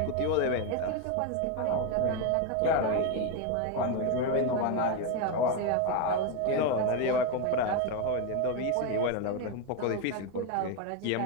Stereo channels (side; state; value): both; different; correlation 0.02